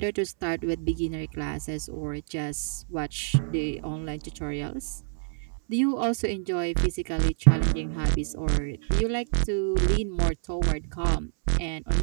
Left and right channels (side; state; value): left; silent; 60 dB below the other